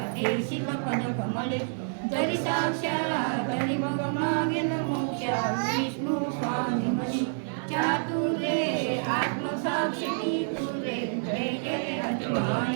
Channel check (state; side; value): silent; left; 56 dB below the other